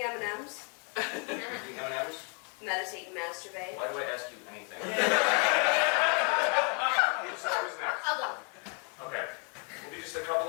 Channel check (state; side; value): quieter; right; 37.6 dB